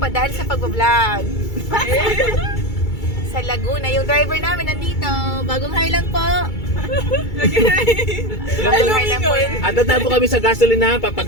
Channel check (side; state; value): right; late; 2.3 ms